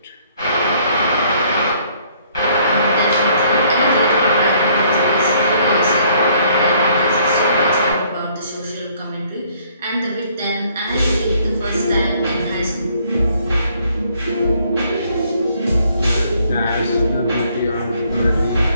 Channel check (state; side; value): inverted; both; correlation -0.64